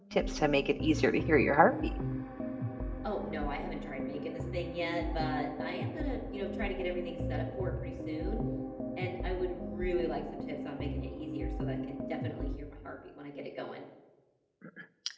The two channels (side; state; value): both; identical; correlation 1.00